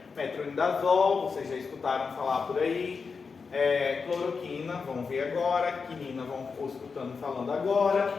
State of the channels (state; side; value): quieter; right; 5.1 dB